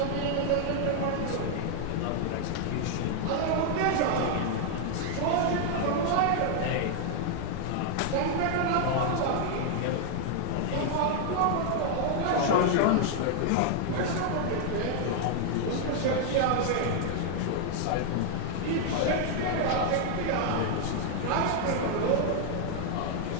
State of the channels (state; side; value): different; both; correlation 0.00